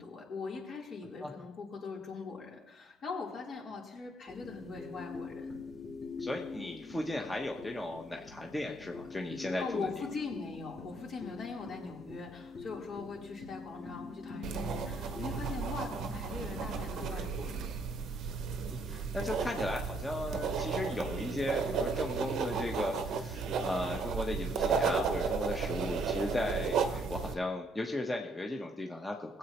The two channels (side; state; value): both; normal; correlation 0.68